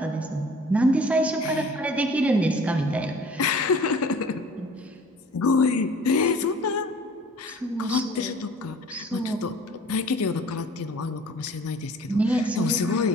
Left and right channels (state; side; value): normal; both; correlation 0.49